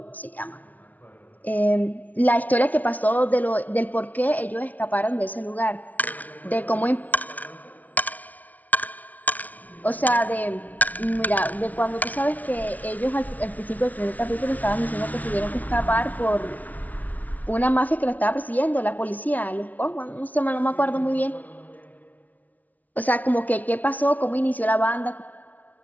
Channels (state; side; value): late; right; 0.074 ms